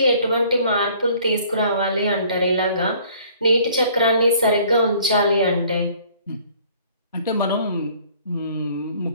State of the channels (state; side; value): inverted; both; correlation -0.56